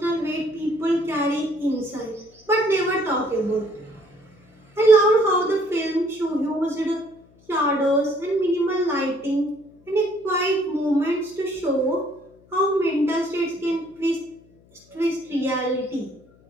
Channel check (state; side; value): noise; left; hum, 29 dB below the sound